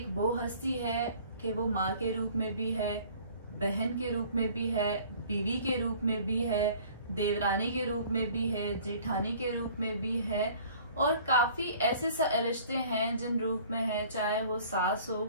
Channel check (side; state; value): both; inverted; correlation -0.51